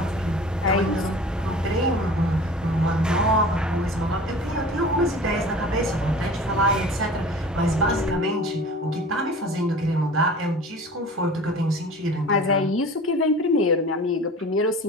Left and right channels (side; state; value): both; normal; correlation 0.41